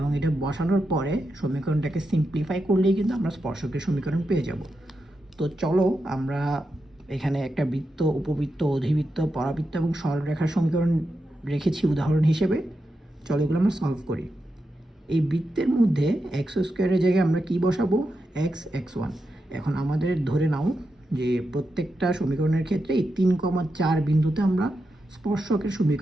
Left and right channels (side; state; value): both; normal; correlation 0.87